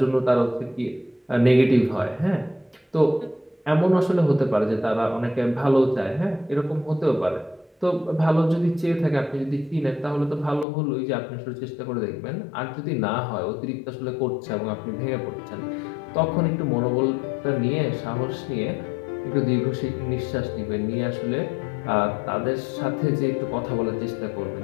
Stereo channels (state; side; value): drops out; right; at 10.7 s